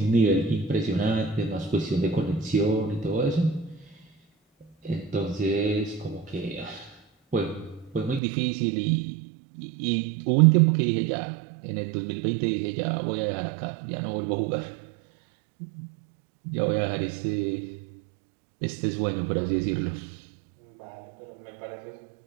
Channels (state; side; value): drops out; left; at 8.2 s